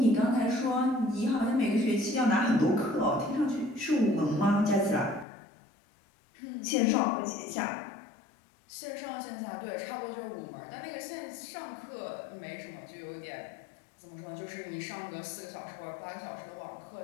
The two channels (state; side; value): drops out; right; at 5.2 s